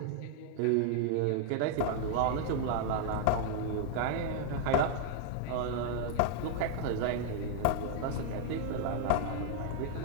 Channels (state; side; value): different; both; correlation 0.00